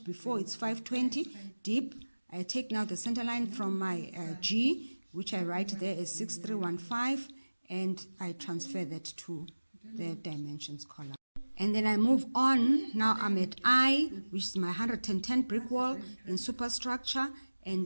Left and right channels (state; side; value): inverted; both; correlation -1.00